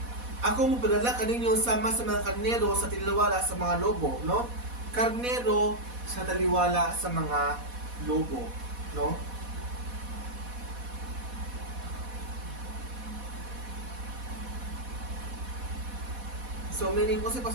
ako mo padala kaninyo sama sa mga karnero sa taliwala sa mga lobo, no? Karnero sa taliwala sa mga lobo, no? So meaning ko si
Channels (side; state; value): left; late; 4.1 ms